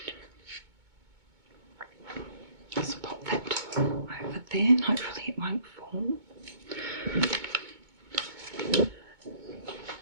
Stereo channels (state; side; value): late; left; 2.2 ms